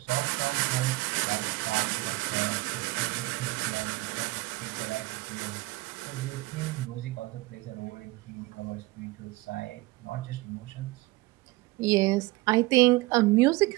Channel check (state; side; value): quieter; left; 20.9 dB